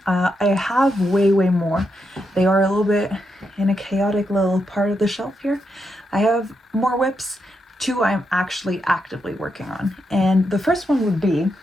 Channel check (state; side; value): normal; both; correlation 0.82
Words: I have way more. They are a little bit in a chaotic little part of the shelf here. I have more whips. 2 I'm actually actively working on. And the first one would be,